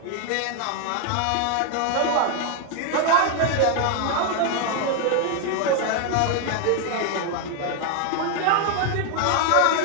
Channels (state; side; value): different; both; correlation 0.01